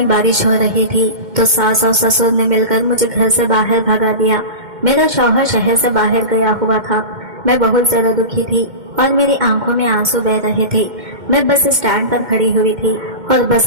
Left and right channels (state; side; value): late; left; 2.1 ms